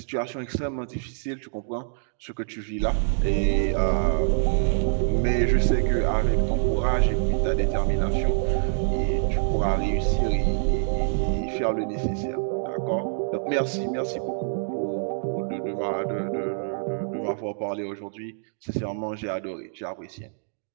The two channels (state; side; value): silent; left; digital silence